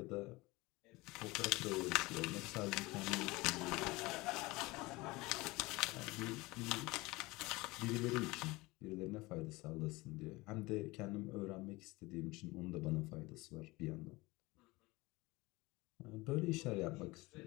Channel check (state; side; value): quieter; right; 22.1 dB